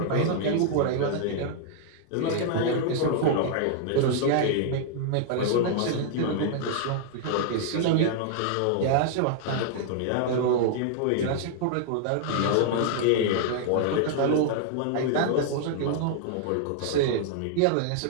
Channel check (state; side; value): different; both; correlation -0.01